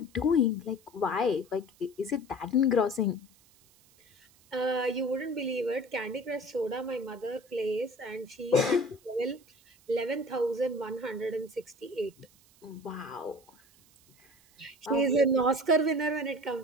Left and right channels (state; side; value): noise; right; hiss, 29 dB below the sound